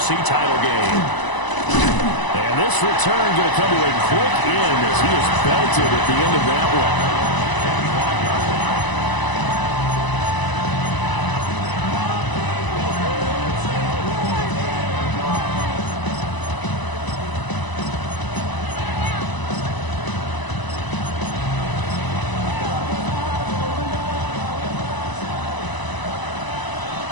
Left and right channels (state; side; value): late; right; 1.0 ms